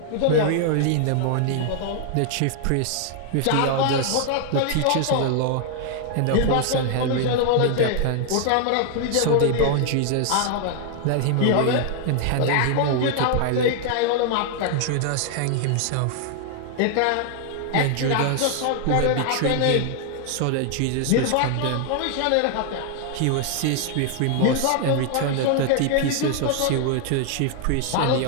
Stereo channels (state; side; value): different; both; correlation 0.00